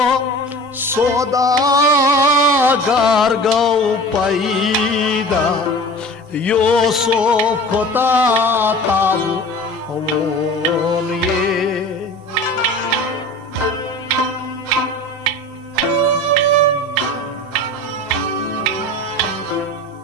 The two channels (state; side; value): normal; both; correlation 0.38